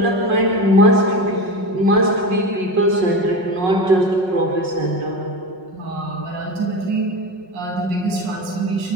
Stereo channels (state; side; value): late; left; 5.4 ms